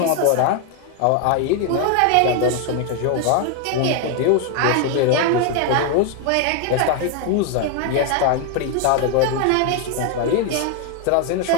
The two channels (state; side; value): different; both; correlation 0.01